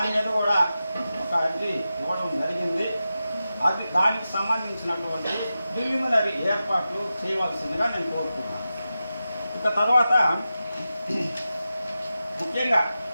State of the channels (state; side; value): inverted; both; correlation -0.92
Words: మీద కూడా ఒక అర్జీ ఇవ్వడం జరిగింది. అది దానికి సంబంధించినటువంటి ప్రిలిమినరీ ఏర్పాట్లు చేయవలసిందిగా నేను కోరుతున్నాను. ఇక తర్వాత ముఖ్యంగా